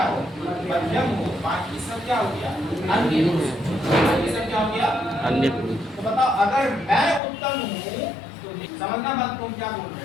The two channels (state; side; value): drops out; right; at 7.2 s